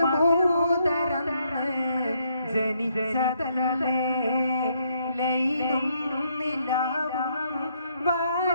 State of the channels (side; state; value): both; inverted; correlation -0.73